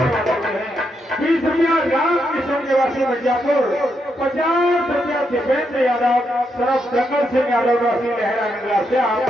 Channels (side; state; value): both; normal; correlation 0.81